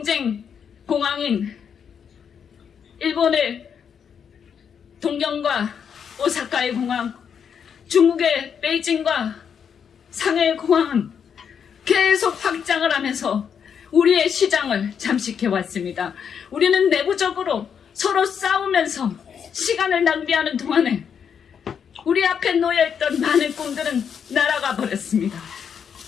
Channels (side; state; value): right; quieter; 7.4 dB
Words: 공항인 일본의 동경과 오사카의 공항, 중국의 베이징과 상해의 공항은 계속 확장을 하면서 우리의 시장을 잠식해 왔습니다. 우리는 내부적으로 서로 싸우면서 시간을 낭비하는 동안에 우리 앞에 놓여있던 많은 꿈들은 날아가 버렸습니다.